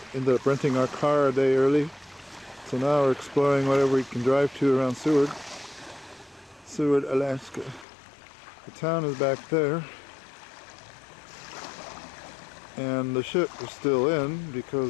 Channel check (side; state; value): right; drops out; at 7.9 s